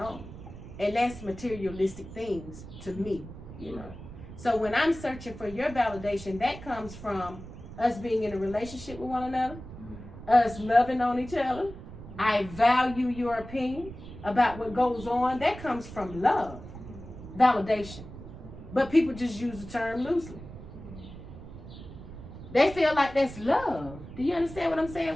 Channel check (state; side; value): noise; right; rumble, 14 dB below the sound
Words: And that's materialistic things to me, you know. So when I'm searching for your validation, that comes from us being in a relationship with one another, us loving on each other. I value your opinion about what goes on. That comes from love, validation. But people just use the term loosely. They feel like that's love. Do you understand what I'm saying?